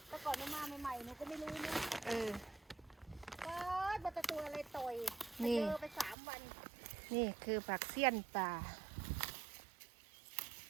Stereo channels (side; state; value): left; drops out; at 6.2 s